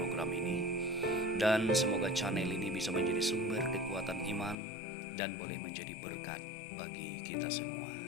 ini. Dan semoga channel ini bisa menjadi sumber kekuatan iman dan boleh menjadi berkat bagi kita semua.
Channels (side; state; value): right; drops out; at 4.5 s